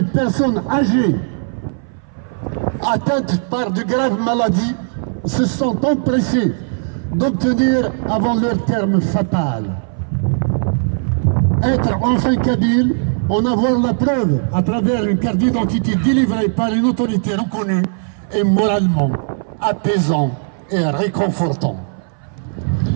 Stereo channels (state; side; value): silent; left; 60 dB below the other